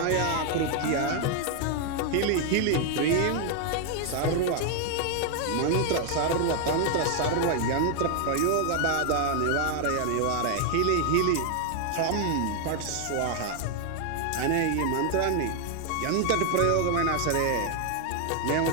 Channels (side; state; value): both; different; correlation 0.00